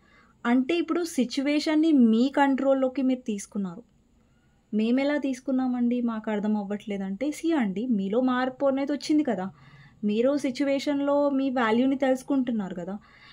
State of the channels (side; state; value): both; identical; correlation 1.00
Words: అంటే ఇప్పుడు సిట్యుయేషన్‌ని మీ కంట్రోల్‌లోకి మీరు తీసుకున్నారు. మేమెలా తీసుకున్నామండి మాకు అర్థం అవ్వట్లేదంటే, అండి మీలో మార్పు అనేది వచ్చింది కదా! మీరు సిట్యుయేషన్‌లో మీ వాల్యూని తెలుసుకుంటున్నారు కదా!